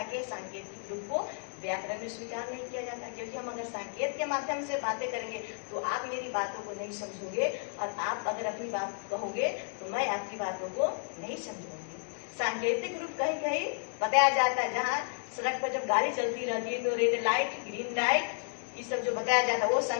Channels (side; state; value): right; silent; 56 dB below the other